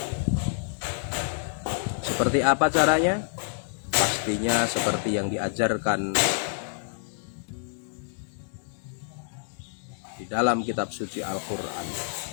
Seperti apa caranya? Pastinya seperti yang diajarkan di dalam kitab suci Al-Quran,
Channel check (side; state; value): right; silent; digital silence